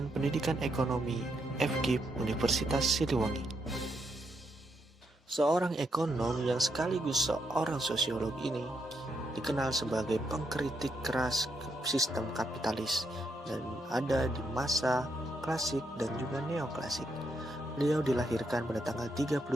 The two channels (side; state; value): both; normal; correlation 0.79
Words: Pendidikan Ekonomi FKIP Universitas Siliwangi. Seorang ekonom yang sekaligus seorang sosiolog ini dikenal sebagai pengkritik keras sistem kapitalis dan ada di masa klasik dan juga neoklasik. Beliau dilahirkan pada tanggal 30